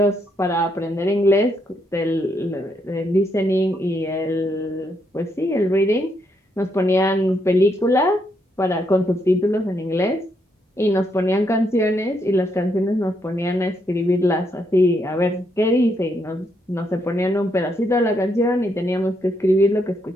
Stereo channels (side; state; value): both; normal; correlation 0.77